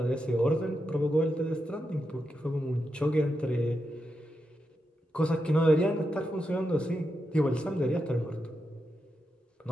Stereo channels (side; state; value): both; normal; correlation 0.86